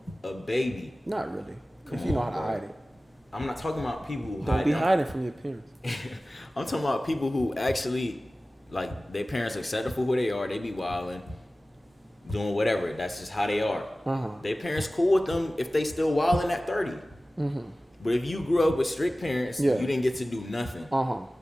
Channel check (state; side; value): normal; both; correlation 0.97